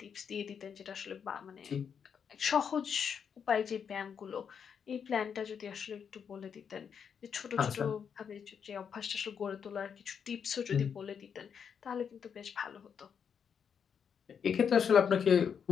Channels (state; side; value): quieter; right; 7.2 dB